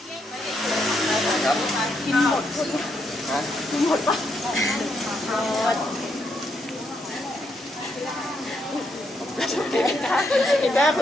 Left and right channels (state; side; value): normal; both; correlation 0.78